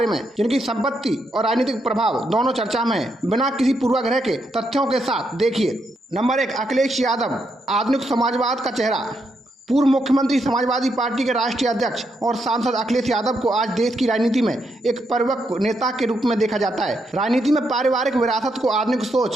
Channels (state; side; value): normal; both; correlation 0.79